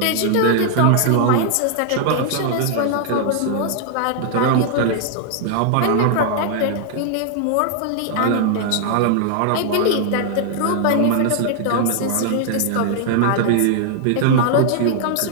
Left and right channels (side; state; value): both; different; correlation 0.00